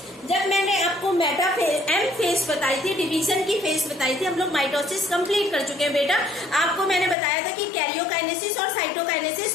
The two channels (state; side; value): drops out; right; at 7.2 s